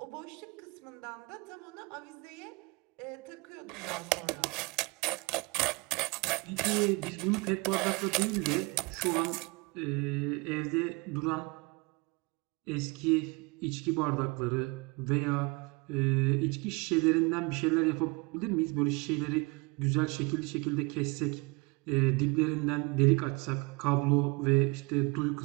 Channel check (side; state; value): left; quieter; 28.2 dB